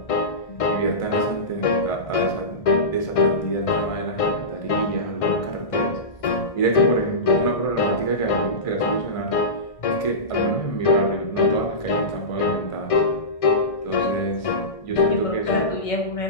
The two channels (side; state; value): right; late; 1.6 ms